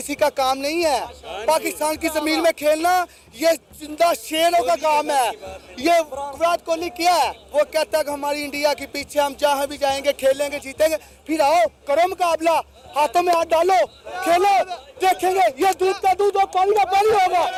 का काम नहीं है। पाकिस्तान की जमीन में खेलना ये जिंदा शेरों का काम है। ये विराट कोहली क्या है, वो कहता है कि हमारी इंडिया के पीछे हम जहाँ भी जाएंगे खेलेंगे जीतेंगे। फिर आओ करो मुकाबला, हाथों में हाथ डालो, खेलो, देखेंगे ये दूध का दूध और पानी का पानी होगा।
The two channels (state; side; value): identical; both; correlation 1.00